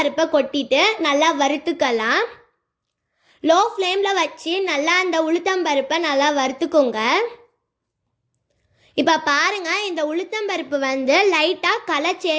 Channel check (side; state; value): both; identical; correlation 1.00